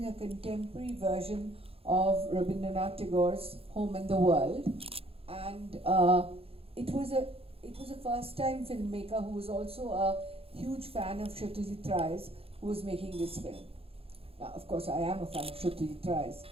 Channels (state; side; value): late; left; 0.28 ms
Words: a contemporary version of Rabindranath Tagore's Home in the World, and it was a first-time filmmaker who was also a huge fan of Satyajit Ray's who was making this film. Now, of course, I am a fan of Satyajit Ray's,